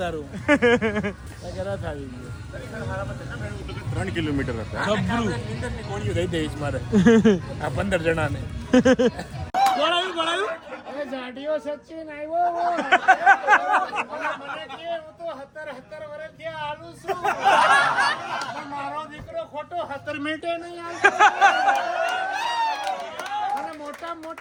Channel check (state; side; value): identical; both; correlation 1.00